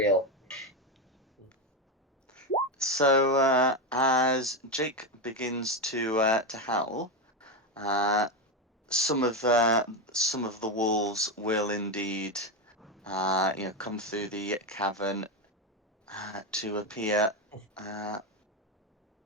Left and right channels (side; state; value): both; normal; correlation 0.11